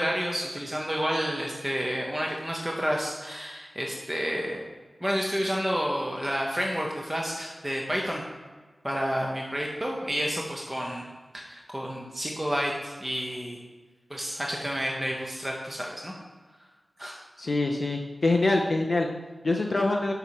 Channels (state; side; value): normal; both; correlation 0.96